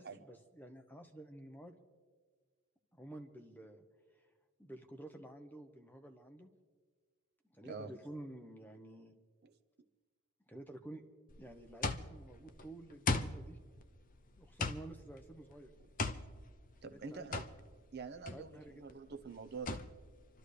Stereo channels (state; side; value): normal; both; correlation 0.44